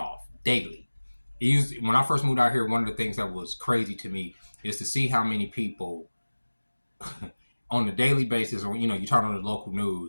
daily. When I first moved out here, one of the things that was crazy to me is to see how many people on a daily basis, or you turn on the local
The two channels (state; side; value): inverted; both; correlation -1.00